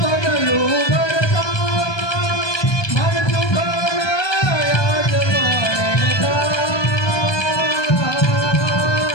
गलू बरता मन चुकाना याद मानता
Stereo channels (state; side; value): late; right; 1.2 ms